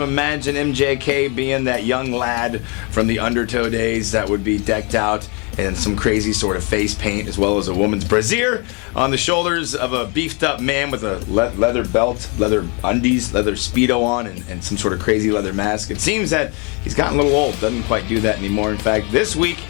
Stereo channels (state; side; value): quieter; right; 32.6 dB